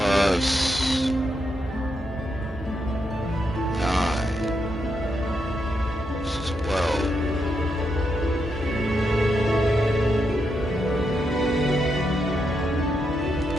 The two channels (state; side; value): normal; both; correlation 0.82